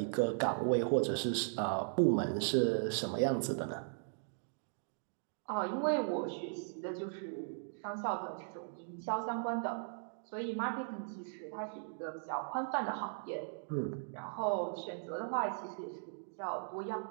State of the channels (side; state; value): left; silent; digital silence